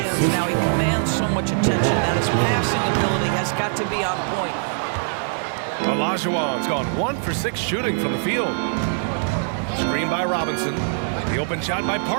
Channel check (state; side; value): silent; left; 59 dB below the other